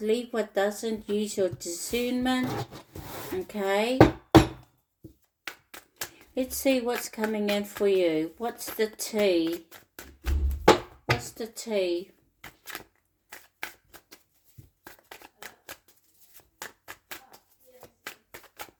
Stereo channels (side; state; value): both; identical; correlation 1.00